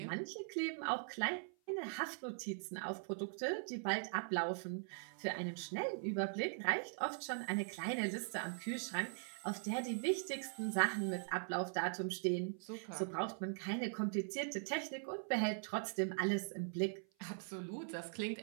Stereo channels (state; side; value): silent; left; 50 dB below the other